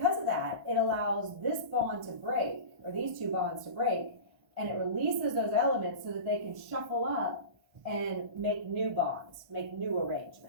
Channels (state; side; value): late; left; 1.4 ms